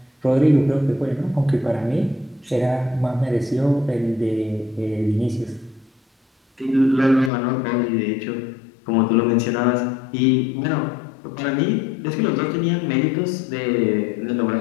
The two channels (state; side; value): drops out; right; at 7.3 s